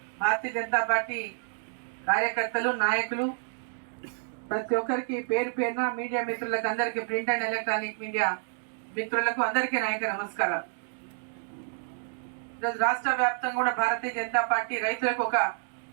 భారతీయ జనతా పార్టీ కార్యకర్తలు, నాయకులు, ప్రతి ఒక్కరికి పేరు పేరున మీడియా మిత్రులకు అందరికీ, ప్రింట్ అండ్ ఎలక్ట్రానిక్ మీడియా మిత్రులకు అందరికీ నాయక నమస్కారాలు. ఈరోజు రాష్ట్ర వ్యాప్తంగా కూడా భారతీయ జనతా పార్టీ రైతులకు ఒక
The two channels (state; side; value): silent; left; digital silence